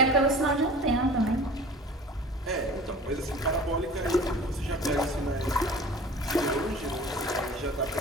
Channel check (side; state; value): both; normal; correlation 0.41